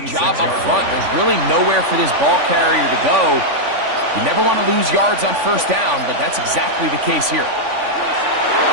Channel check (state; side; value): late; left; 3.5 ms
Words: job up front. There's really nowhere for this ball carrier to go. You never want to lose yards on 1st down, but that's exactly the case here.